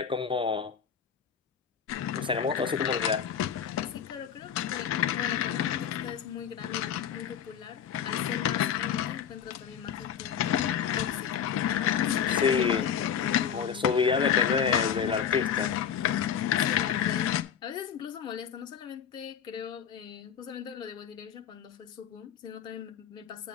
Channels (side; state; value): right; quieter; 8.1 dB